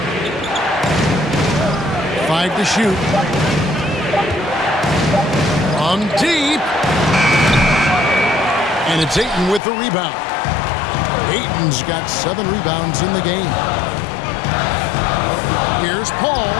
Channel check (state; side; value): drops out; right; at 9.6 s